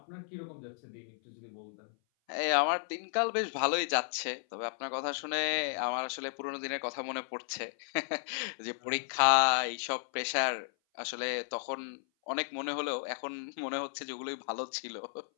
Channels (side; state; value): right; silent; 55 dB below the other